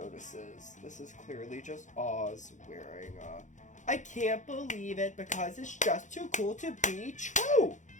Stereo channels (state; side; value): late; right; 0.36 ms